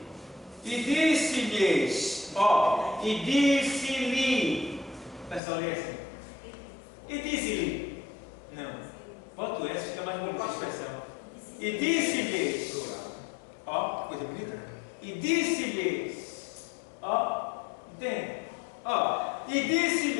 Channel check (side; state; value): right; drops out; at 5.4 s